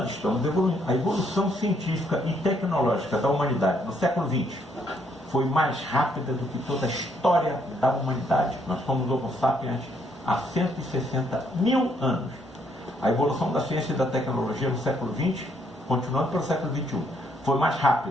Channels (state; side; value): normal; both; correlation 0.71